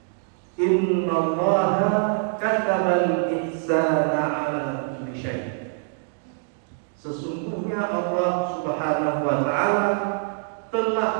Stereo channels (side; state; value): left; silent; 60 dB below the other